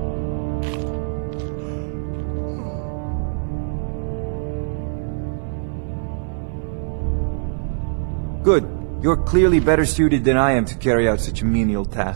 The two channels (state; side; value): silent; left; 64 dB below the other